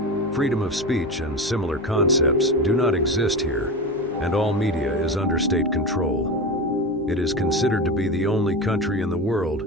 Freedom of speech and similar concepts do not exist here, and all media is under state control. It is considered to be the only country in the world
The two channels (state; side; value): noise; left; hum, 28 dB below the sound